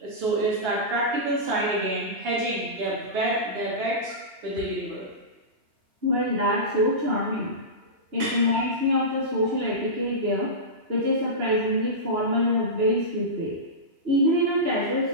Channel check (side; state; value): left; late; 2.9 ms